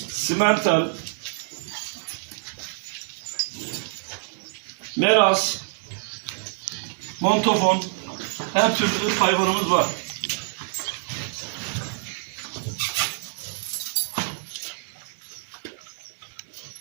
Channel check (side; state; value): left; silent; digital silence